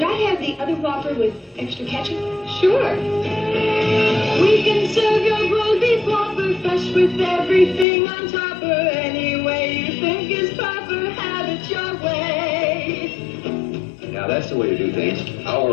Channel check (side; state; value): right; drops out; at 7.9 s